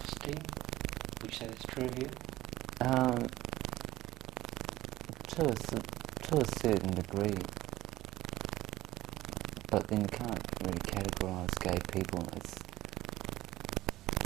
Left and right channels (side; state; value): left; quieter; 16.3 dB